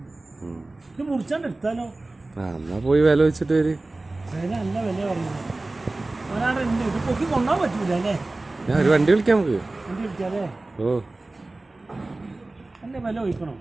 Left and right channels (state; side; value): quieter; left; 3.0 dB